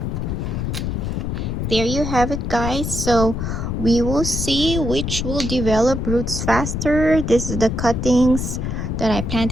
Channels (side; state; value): left; noise; rumble, 2 dB below the sound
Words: there you have it, guys. So we will see which will develop roots faster. This is the cuttings that I